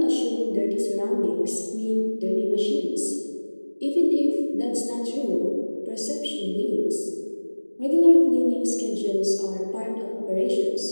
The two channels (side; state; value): both; inverted; correlation -1.00